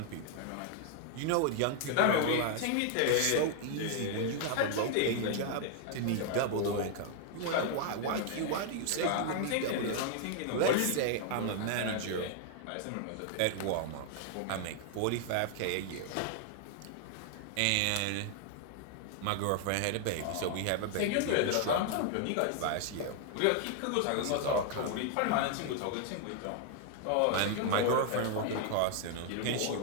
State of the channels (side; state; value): both; different; correlation 0.00